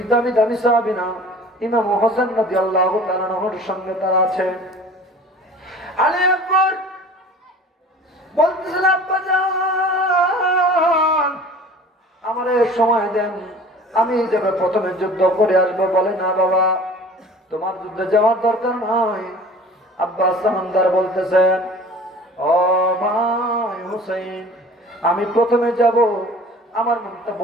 দামি দামি সাহাবীরা ইমাম হোসেন রাদিয়াল্লাহু তাআলার সঙ্গে তারা আছে। আলী আকবর বলতেছেন, আব্বা জান আমারে সময় দেন, আমি যাবে প্রথমে যুদ্ধ করে আসবো। বলে, না বাবা, তোমার যুদ্ধে যাওয়ার দরকার নয়। আব্বাস সামানদার বলতেছেন, ও ভাই হুসাইন, আমি প্রথমে যাব, আমার মনটা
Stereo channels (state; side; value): normal; both; correlation 0.44